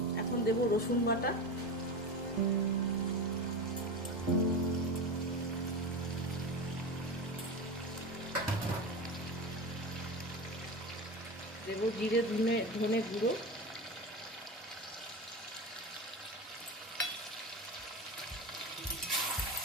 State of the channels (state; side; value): normal; both; correlation 0.24